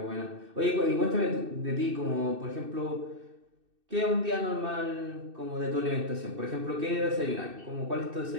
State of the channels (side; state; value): left; late; 2.6 ms